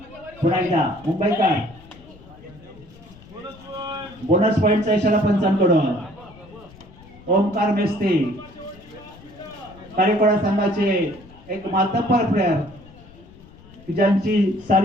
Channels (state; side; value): noise; left; rumble, 22 dB below the sound